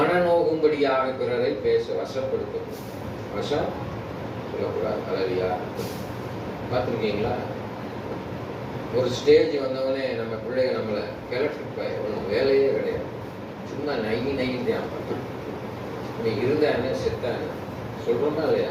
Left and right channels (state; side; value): identical; both; correlation 1.00